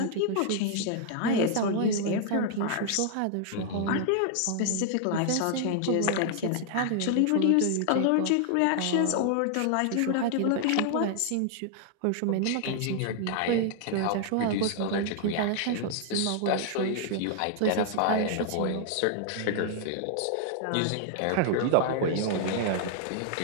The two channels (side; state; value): both; different; correlation 0.00